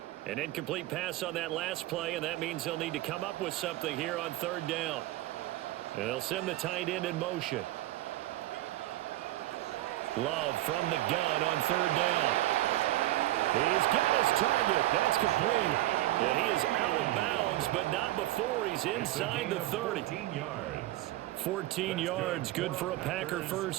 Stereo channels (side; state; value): left; quieter; 16.2 dB